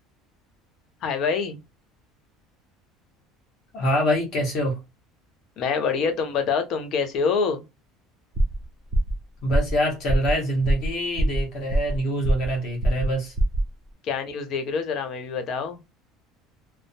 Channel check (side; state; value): both; normal; correlation 0.63